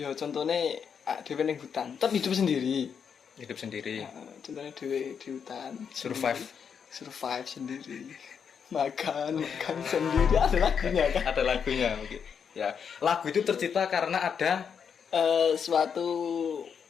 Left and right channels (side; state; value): right; quieter; 7.0 dB